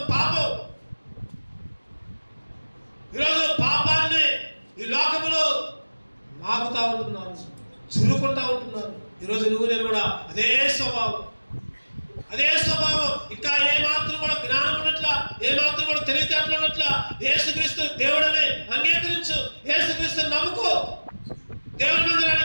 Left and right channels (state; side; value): inverted; both; correlation -1.00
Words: పాపం. ఈరోజు పాపాన్ని ఈ లోకములో నాకుతా ఉంటున్నారు, జురుకుంటా ఉంటున్నారు. ఈరోజు నువ్వు నేను కూడా అదే స్వభావం. ఇంకా ఏమాత్రం కూడా జ్ఞానం ఉన్నట్ల, ఏమాత్రం కూడా తెలివితేటలు ఉన్నట్ల, యేసుక్రీస్తు దేవుడని అంగీకరించు, యేసుక్రీస్తుని నమ్ముకో, దేవుని